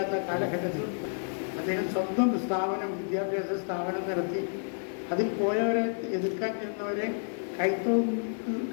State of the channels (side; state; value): right; silent; 58 dB below the other